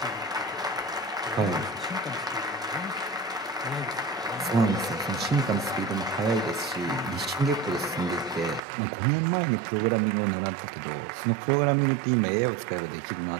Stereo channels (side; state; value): left; drops out; at 8.6 s